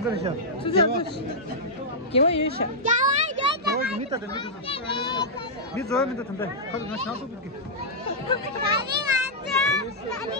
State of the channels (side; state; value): both; normal; correlation -0.09